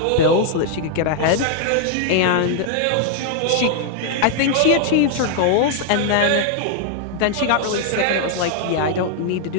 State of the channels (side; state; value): both; different; correlation 0.00